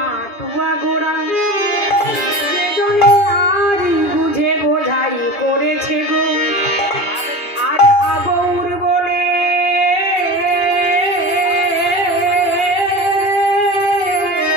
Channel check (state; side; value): late; right; 2.4 ms